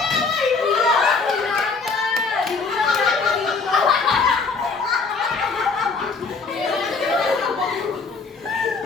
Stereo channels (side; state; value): right; quieter; 4.5 dB